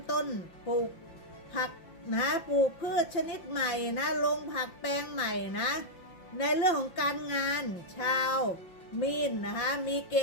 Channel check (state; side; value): late; right; 5.7 ms